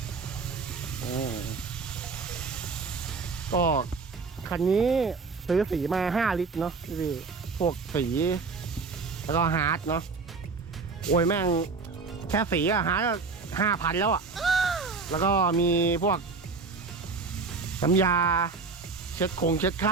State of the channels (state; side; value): quieter; left; 4.4 dB